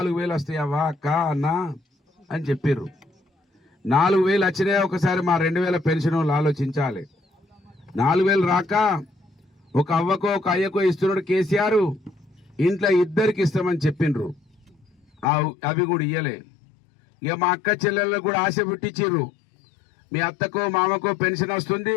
వస్తాయి అవ్వా అక్క అన్న అని చెప్పారు. 4000 వచ్చినాయి. ఒకసారి మా 2000 పెన్షన్ వాళ్ళు ఆలోచించాలి. 4000 రాక ఒక అవ్వకో ఒక అయ్యకో ఇస్తున్నాడు కేసీఆర్. ఇంట్లో 2కి ఇస్తామని చెప్పిండ్రు, అవి కూడా ఇయ్యలే. ఇక మా అక్క చెల్లెళ్ళకు కూడా ఆశ పుట్టించారు, మీ అత్తకో మామకో పెన్షన్ వస్తుంది,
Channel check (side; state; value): right; drops out; at 15.2 s